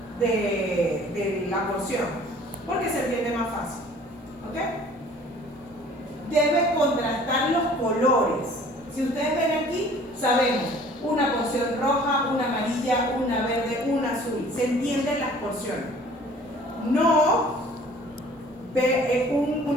la porción, porque se entiende más fácil. ¿Ok? Debe contrastar los colores. Si ustedes ven aquí, sabemos una porción roja, una amarilla, una verde, una azul. Se entienden las porciones. No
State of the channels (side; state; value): both; normal; correlation 0.51